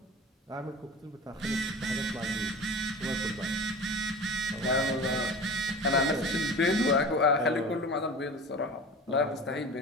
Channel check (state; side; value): normal; both; correlation 0.35